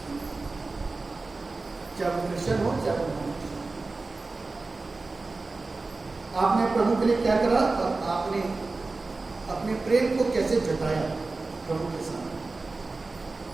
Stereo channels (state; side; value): quieter; left; 3.6 dB